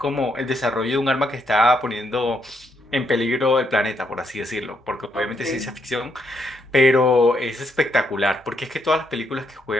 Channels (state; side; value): normal; both; correlation 0.76